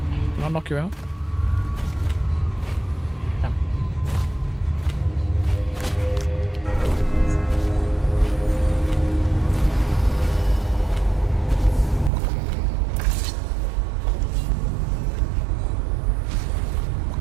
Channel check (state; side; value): drops out; left; at 12.1 s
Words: Can I knock you out? Yeah.